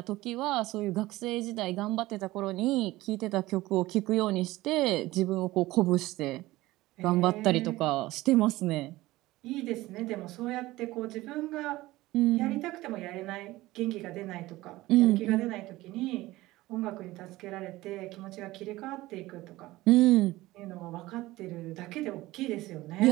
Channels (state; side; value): quieter; left; 18.2 dB